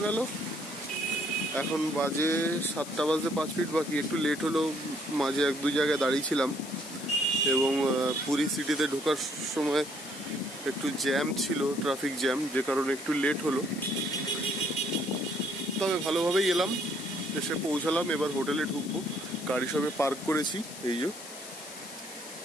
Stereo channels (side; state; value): left; noise; hiss, 13 dB below the sound